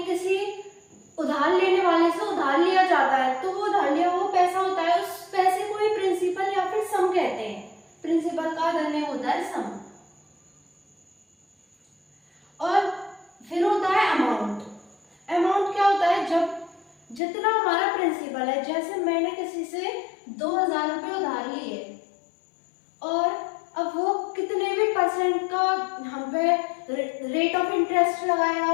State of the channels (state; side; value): drops out; right; at 17.2 s